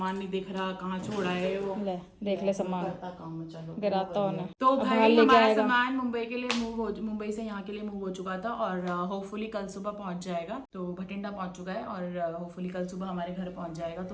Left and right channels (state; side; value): identical; both; correlation 1.00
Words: नहीं दिख रहा, कहाँ छोड़ा है वो? ले देख ले सामान, काम चलो गिराता होना। तो भाई हमारा सामान मुंबई के लिए मुंबई से यहाँ के लिए मूव हो चुका था, और होपफुली कल सुबह पहुंच जाएगा। तो भटिंडा पहुंच चुका है और होपफुली कल सुबह हमारे घर पहुंच जाएगा।